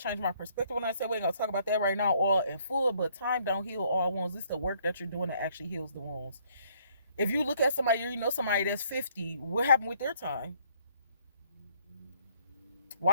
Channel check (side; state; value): both; inverted; correlation -0.65